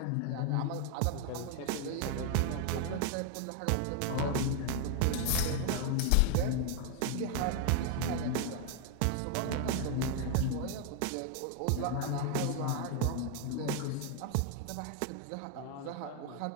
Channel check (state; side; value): different; both; correlation 0.00